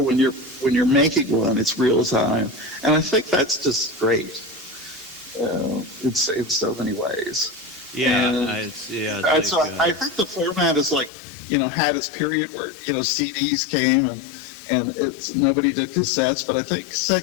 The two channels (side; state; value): right; drops out; at 11.1 s